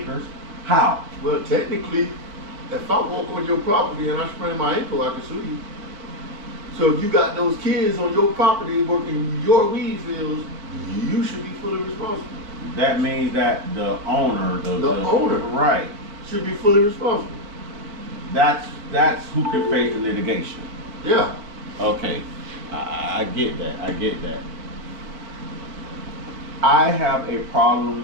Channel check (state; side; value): late; left; 4.6 ms